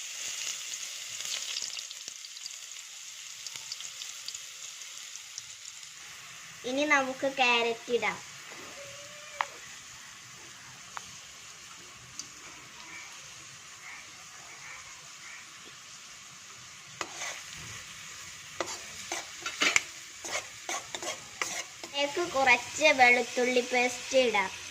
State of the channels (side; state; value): both; identical; correlation 1.00